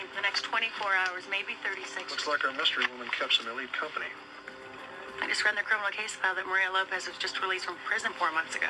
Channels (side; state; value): both; identical; correlation 1.00